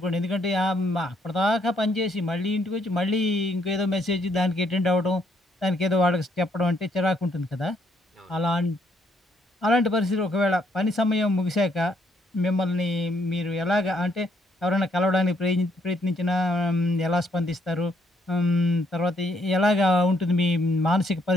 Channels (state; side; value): normal; both; correlation 0.71